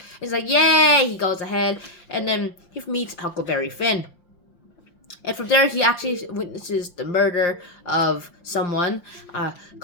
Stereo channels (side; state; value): right; late; 5.7 ms